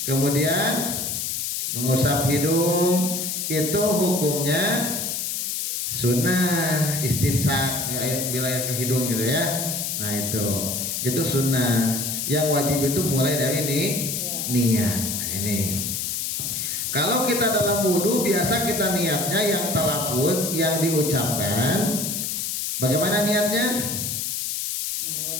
kemudian mengusap hidung, itu hukumnya sunnah istinsak, bila air ke hidung, gitu ya. Nah, itu sunnah. Yang wajib itu mulai dari niat. Nah, ini kalau kita dalam wudhu biasa kita niatnya yang talafuz, yang diucapkan. Bagaimana niatnya?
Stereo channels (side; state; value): left; noise; hiss, 2 dB below the sound